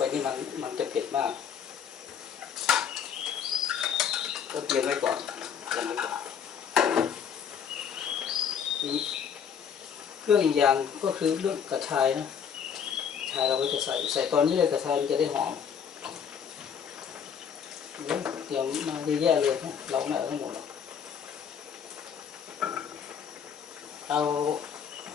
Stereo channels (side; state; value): right; quieter; 7.6 dB